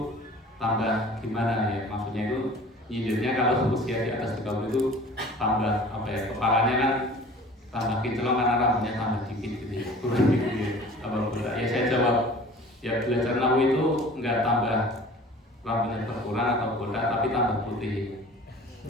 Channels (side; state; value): both; normal; correlation 0.45